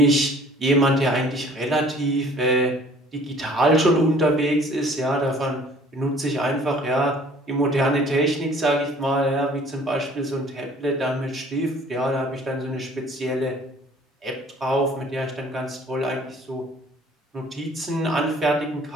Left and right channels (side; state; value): both; normal; correlation 0.53